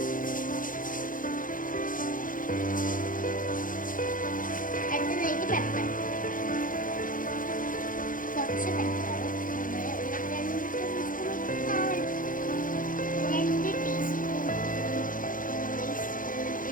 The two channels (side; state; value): right; late; 0.39 ms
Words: അടുത്തതായിട്ട് പെപ്പർ, കുറച്ച് പെപ്പർ, 2 ടീസ്പൂൺ.